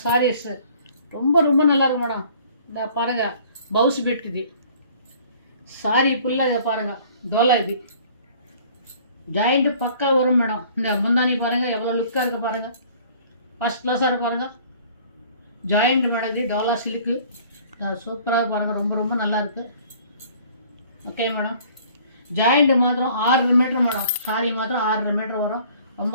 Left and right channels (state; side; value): inverted; both; correlation -0.53